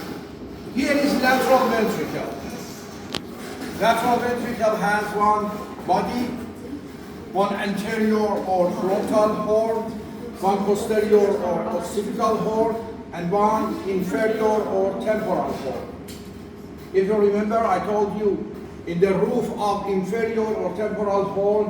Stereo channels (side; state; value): both; identical; correlation 1.00